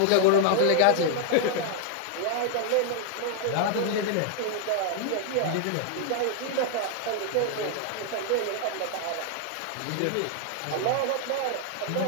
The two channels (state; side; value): different; both; correlation 0.00